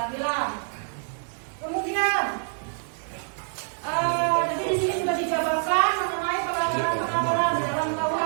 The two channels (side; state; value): left; silent; digital silence